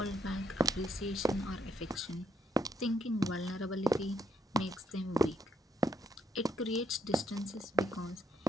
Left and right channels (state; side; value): normal; both; correlation 0.73